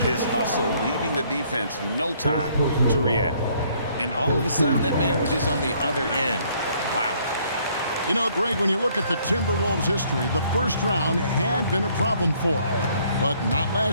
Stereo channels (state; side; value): inverted; both; correlation -0.64